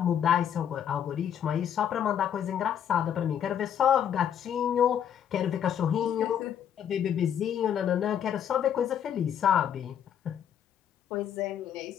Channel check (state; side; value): quieter; right; 9.2 dB